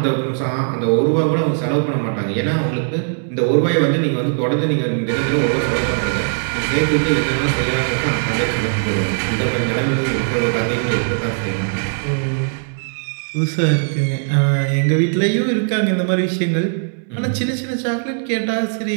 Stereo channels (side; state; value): left; silent; digital silence